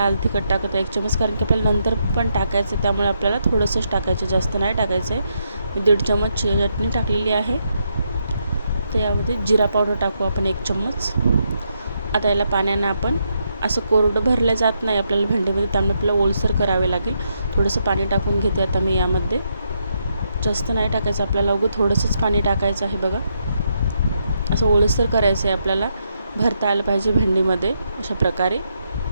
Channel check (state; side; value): inverted; both; correlation -0.80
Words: तिखट टाकत आहे 1 चमच, कारण की आपल्याला नंतर पण टाकायचं आहे, त्यामुळे आपल्याला थोडंसंच टाकायचं, जास्त नाही टाकायचं आहे। मी 1.5 चमच चटणी टाकलेली आहे। त्यामध्ये जिरा पावडर टाकू आपण 1 चम्मच। आता याला पाण्याने आपण असं कोरडं भरलं जात नाही आपल्याला भेंडीमध्ये, त्यामुळे आपल्याला ओलसर करावे लागेल। थोडंसं पाणी टाकून घेते आता मी यामध्ये, जास्त नाही टाकायचं आपल्याला, उगं थोडंसंच पाणी टाकायचं आहे बघा। असं ओलसर करायचं आहे आपल्याला, भरता आलं पाहिजे भेंडीमध्ये अशा प्रकारे